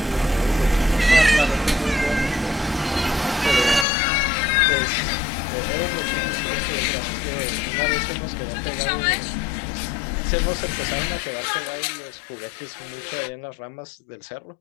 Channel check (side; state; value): right; drops out; at 3.9 s